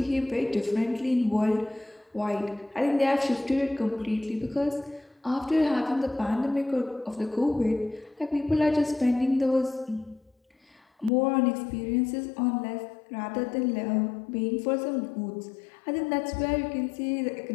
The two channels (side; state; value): right; drops out; at 11.1 s